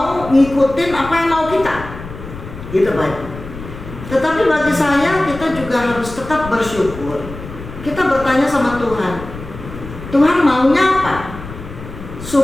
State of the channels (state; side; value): noise; left; rumble, 13 dB below the sound